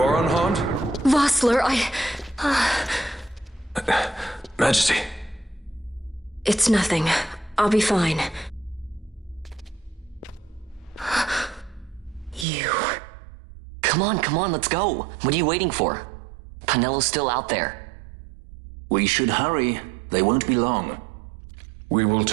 are unharmed? Vossler, Majesty. It's nothing. I'll be fine. You. Come on, let's go. What are you waiting for? Penello's still out there. We should hurry. They won't be long. We will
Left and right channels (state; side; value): drops out; left; at 12.5 s